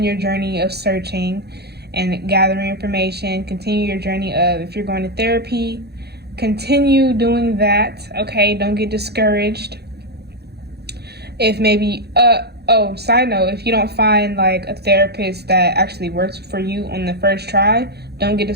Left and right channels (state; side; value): late; left; 0.48 ms